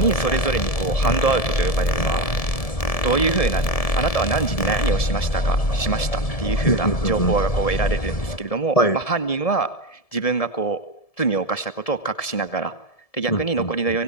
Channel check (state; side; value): late; right; 1.7 ms